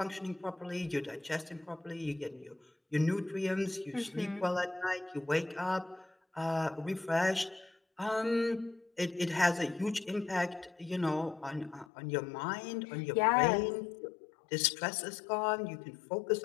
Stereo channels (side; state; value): right; drops out; at 11.9 s